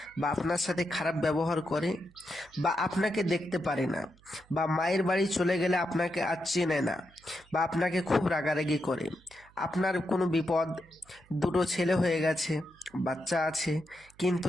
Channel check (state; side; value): noise; right; hum, 28 dB below the sound